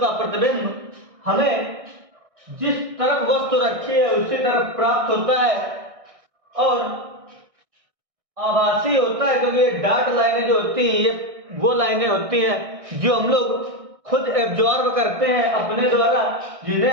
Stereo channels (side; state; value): left; late; 1.6 ms